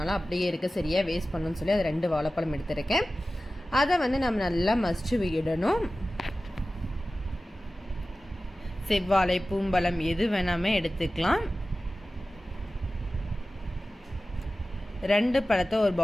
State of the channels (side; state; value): both; normal; correlation 0.95